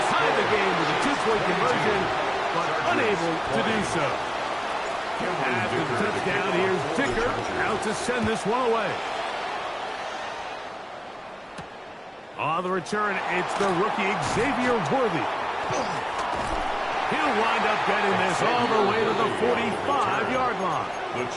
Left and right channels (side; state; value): both; identical; correlation 1.00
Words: tie the game with a 2-point conversion, but unable to do so. After the touchdown, here's Dicker out to send this one away. On the return, it's the rookie Xavier Worthy. He'll wind up getting this all the way to the 45-yard line. The